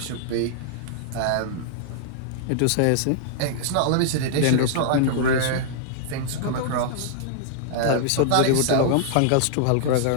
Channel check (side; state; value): both; different; correlation -0.01